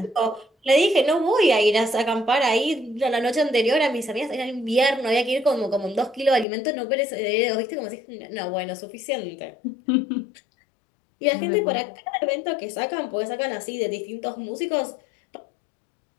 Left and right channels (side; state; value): right; drops out; at 6.5 s